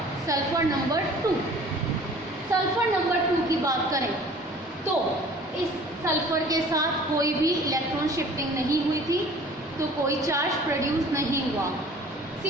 sulphur number 2। Sulphur number 2 की बात करें तो इस सल्फर के साथ कोई भी इलेक्ट्रॉन शिफ्टिंग नहीं हुई थी, तो कोई चार्ज प्रोड्यूस नहीं हुआ।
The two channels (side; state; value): both; normal; correlation 0.48